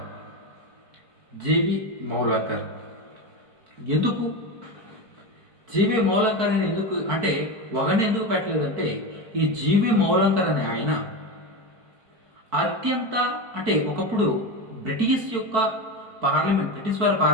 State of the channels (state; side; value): late; left; 4.5 ms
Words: ఎందుకు జీవి మౌలాంకర్ అని ఎందుకు పెట్టలేదంటే ఈ జీవి మౌలాంకర్ అనే ఆయన ఒకప్పుడు బ్రిటిష్ వారి